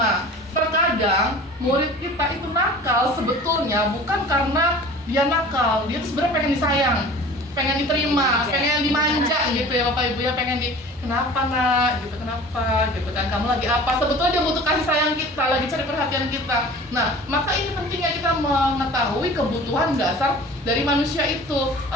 Terkadang murid kita itu nakal sebetulnya bukan karena dia nakal, dia tuh sebenarnya pengen disayang, pengen diterima, pengen dimanja gitu ya Bapak Ibu ya, pengen kenapa nak gitu, kenapa gitu kan, kamu lagi apa, sebetulnya dia butuh kasih sayang kita, lagi cari perhatian kita. Nah, maka ini pentingnya kita mengetahui kebutuhan dasar dari manusia itu.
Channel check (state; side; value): normal; both; correlation 0.42